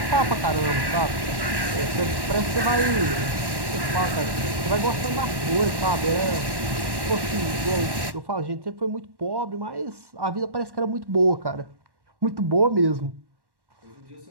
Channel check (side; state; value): left; late; 1.1 ms